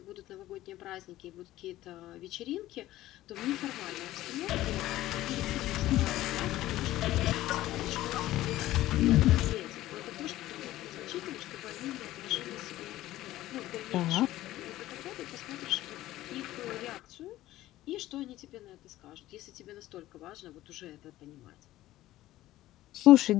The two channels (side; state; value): right; quieter; 15.4 dB